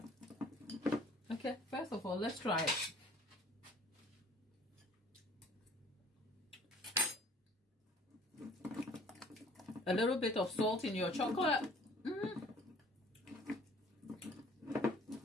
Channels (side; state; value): both; normal; correlation 0.53